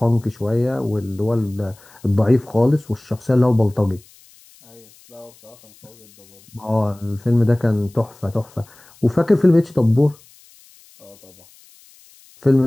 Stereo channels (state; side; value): noise; left; hiss, 27 dB below the sound